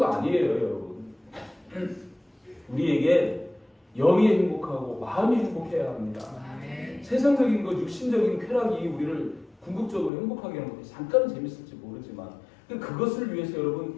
아니에요, 여러분. 우리에게 영이 행복하고 마음이 행복해야 합니다. 세상적인 것, 육신적인 쾌락이 우리를 궁극적으로 행복하게 하는 것이 잠깐은 재밌을지 모르지만 그것을 위해서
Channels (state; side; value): drops out; right; at 10.1 s